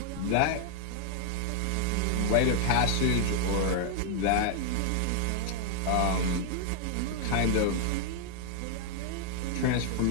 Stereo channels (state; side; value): different; both; correlation 0.00